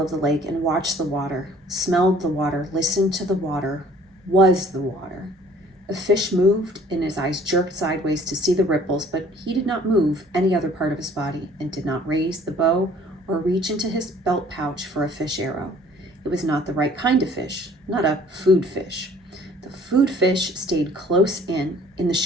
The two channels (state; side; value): normal; both; correlation 0.55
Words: of the lake and watched the water, smelled the water, listened to the water, was the water. A fish moved, and his eyes jerked sideways to see the ripples, but he did not move any other part of his body and did not raise the bow or reach into his belt pouch for a fish arrow. It was not the right kind of fish, not a food fish. Food fish stayed close in the